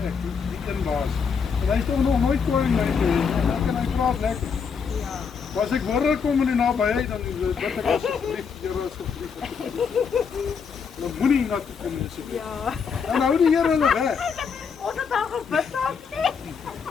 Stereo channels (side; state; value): right; quieter; 6.1 dB